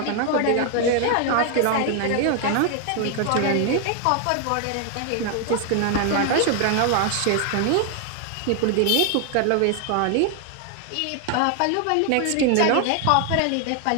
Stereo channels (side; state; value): both; different; correlation 0.00